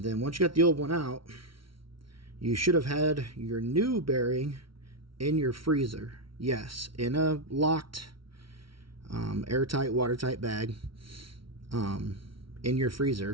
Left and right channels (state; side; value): late; left; 0.74 ms